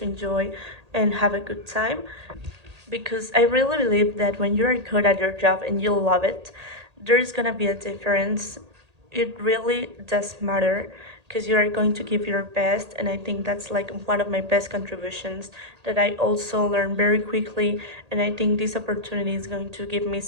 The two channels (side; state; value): left; late; 1.8 ms